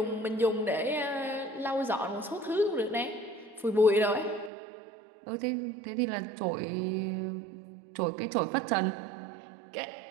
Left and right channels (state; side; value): drops out; left; at 4.5 s